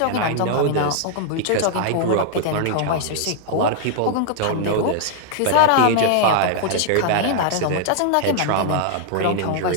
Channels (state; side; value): different; both; correlation -0.01